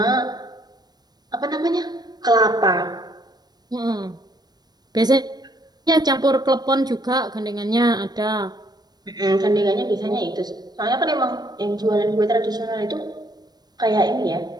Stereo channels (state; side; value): late; left; 0.19 ms